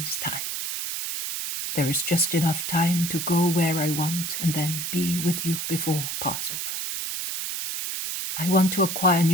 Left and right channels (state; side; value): noise; right; hiss, 4 dB below the sound